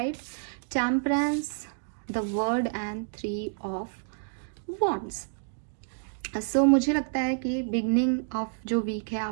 temperance, the world and 3 of wands. So मुझे लगता है कि बिगनिंग ऑफ जो वीक है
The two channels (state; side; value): silent; left; digital silence